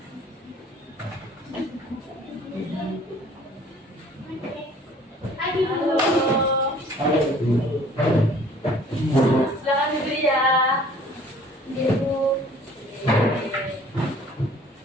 Pagi Bu. Silakan duduk ya. Ya Bu.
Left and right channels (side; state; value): both; normal; correlation 0.53